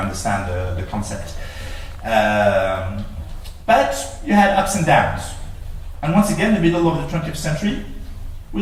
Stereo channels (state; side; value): identical; both; correlation 1.00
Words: the concept. But you had ups and downs. And once again, in the middle of the 20th century,